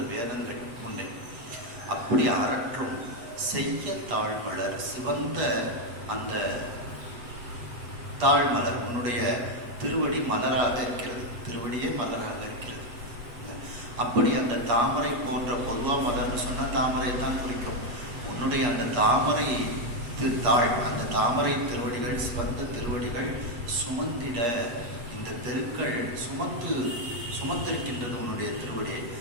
வேதங்கள் உன்னை. அப்படி அரற்றும் செய்ய தாழ்மலர், சிவந்த அந்த தாழ்மலர் உன்னுடைய திருவடி மலராக இருக்கிறது, திருவடியே மலராக இருக்கிறது. அப்படி அந்த தாமரை போன்ற, பொதுவாக மலர்னு சொன்னால் தாமரை தான் குறிக்கும். உன்னுடைய அந்த தாமரை தாழ், அந்த தாமரை திருவடிகள், சிவந்த திருவடிகள் சுமந்திட, இந்த தெருக்கள் சுமந்திருக்கின்றது உன்னுடைய திருவடியை.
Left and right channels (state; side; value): late; left; 8.3 ms